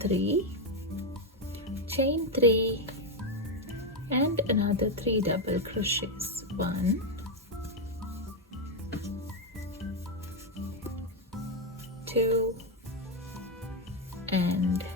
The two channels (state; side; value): normal; both; correlation 0.05